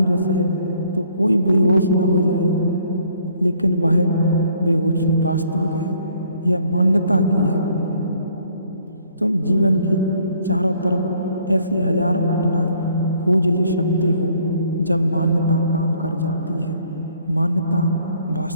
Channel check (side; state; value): both; inverted; correlation -0.62